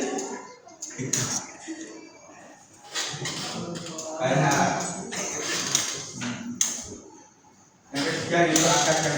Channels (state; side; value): identical; both; correlation 1.00